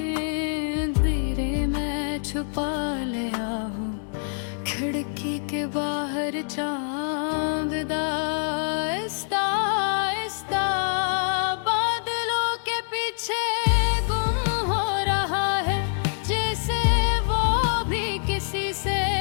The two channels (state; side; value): silent; right; digital silence